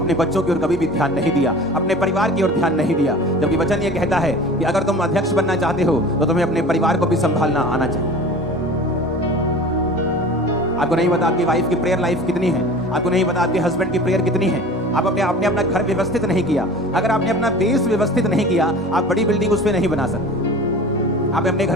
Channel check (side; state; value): both; normal; correlation 0.39